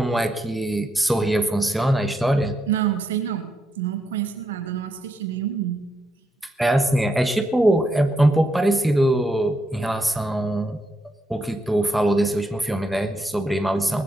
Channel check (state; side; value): normal; both; correlation 0.80